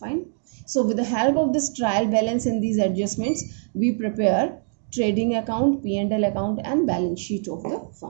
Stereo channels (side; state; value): left; silent; digital silence